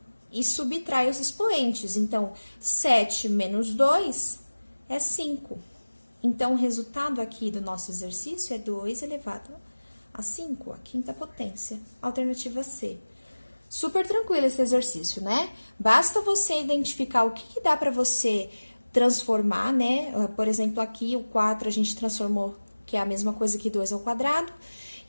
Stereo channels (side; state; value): both; inverted; correlation -1.00